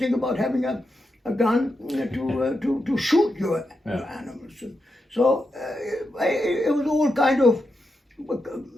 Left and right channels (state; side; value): normal; both; correlation 0.86